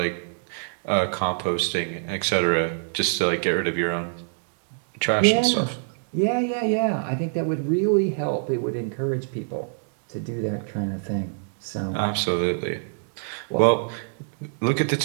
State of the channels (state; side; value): silent; left; digital silence